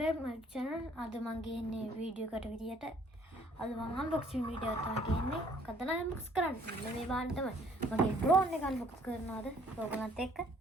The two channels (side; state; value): both; normal; correlation 0.60